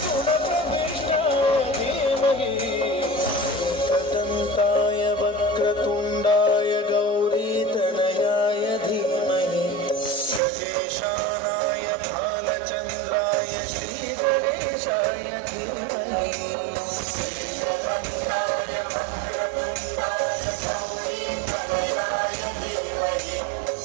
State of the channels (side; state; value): left; drops out; at 10.4 s